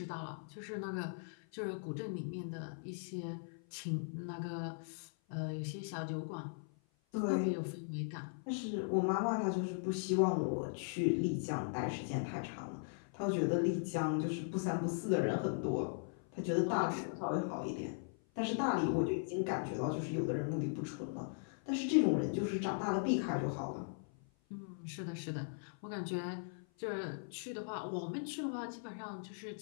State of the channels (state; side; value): silent; right; 52 dB below the other